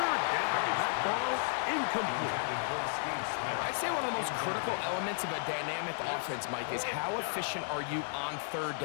down, that ball incomplete. I'd say one of the most critical elements of a dynamic offense, Mike, is how efficient are you on 3rd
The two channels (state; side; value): silent; right; digital silence